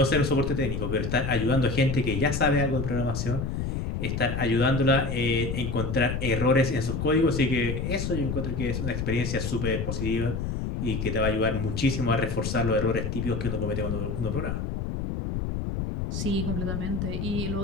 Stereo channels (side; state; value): left; noise; rumble, 2 dB below the sound